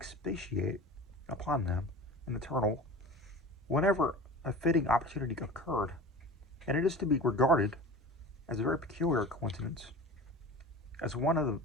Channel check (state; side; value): normal; both; correlation 0.36